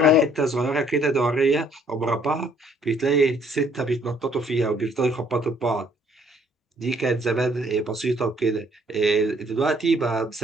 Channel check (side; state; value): both; normal; correlation 0.63